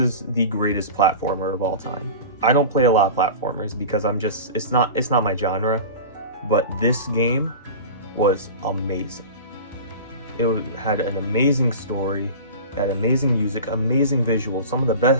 the greatest platformer of all time. I don't play a lot of platformers because it's not my genre, but this game was amazing. It had an amazing story, it had amazing music, amazing visuals, some of the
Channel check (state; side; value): inverted; both; correlation -0.33